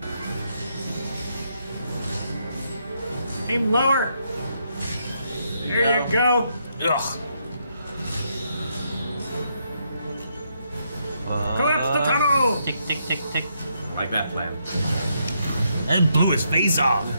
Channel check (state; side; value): inverted; both; correlation -0.77